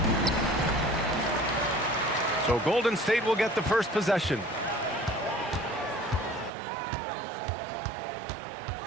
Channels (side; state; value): left; drops out; at 6.5 s